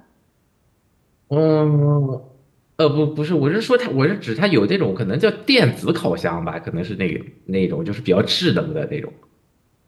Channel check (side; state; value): both; identical; correlation 1.00